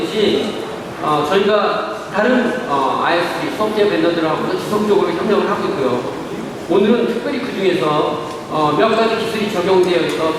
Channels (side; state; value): both; identical; correlation 1.00